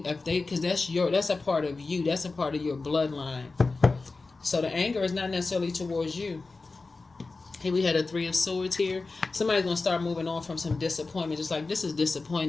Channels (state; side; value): quieter; right; 3.8 dB